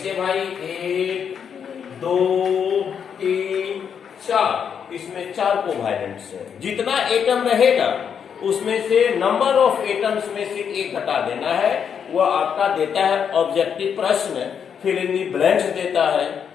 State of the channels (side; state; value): right; quieter; 7.5 dB